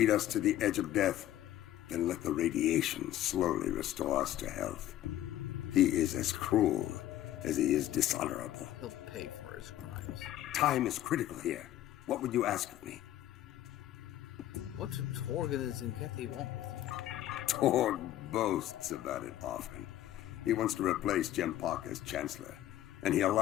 us to the edge of death, then let the radiation slowly restore us to health. He is as cruel as he is dishonorable. He'll pay for his crimes. Time is critical here. What would you ask of me? What do Torg and his Zenkethi want with you? Torg boasts about it often. He wants to replace Jempak as Chancellor, and he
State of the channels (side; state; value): right; quieter; 13.2 dB